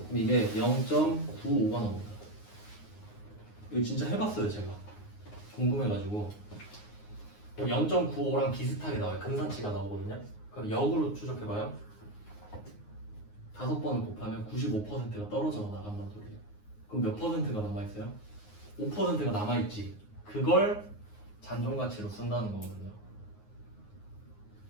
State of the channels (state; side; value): late; right; 9.6 ms